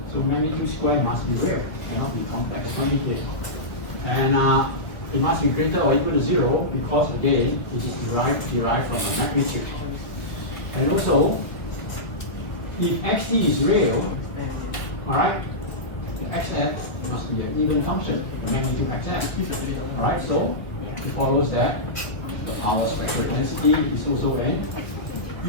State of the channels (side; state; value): right; late; 2.0 ms